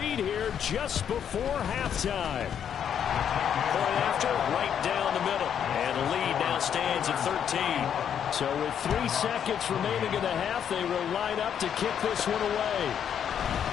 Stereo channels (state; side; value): quieter; right; 8.7 dB